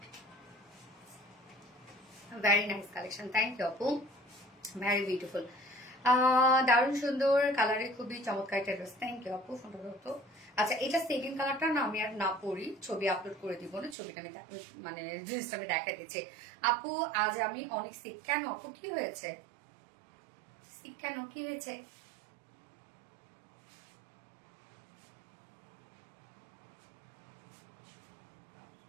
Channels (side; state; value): left; drops out; at 14.0 s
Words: Very nice collection, thank you আপু, ভেরি বিউটিফুল। দারুণ সুন্দর কালারে, খুবই চমৎকার একটা ড্রেস। থ্যাংক ইউ আপু, ফোনটা ধরতো। আচ্ছা, এটা সেকেন্ড কালারটা না আমি আর না পরি, ছবি আপলোড করে দিব না, ছবিটা আমি মানে ড্রেসটা আমি দেখা দিচ্ছি। আপু আজ আমি অনেক সিক। কেন আপু, কি হয়েছে? সিক কেন, কি হয়েছে?